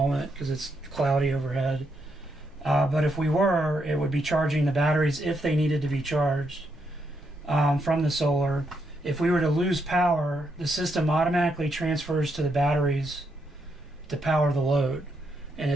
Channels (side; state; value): both; normal; correlation 0.79